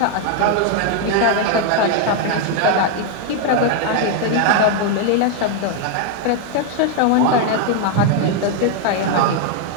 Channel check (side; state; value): both; different; correlation 0.00